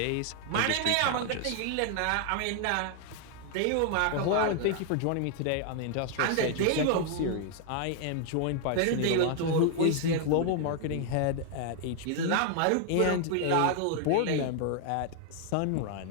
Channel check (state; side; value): different; both; correlation 0.00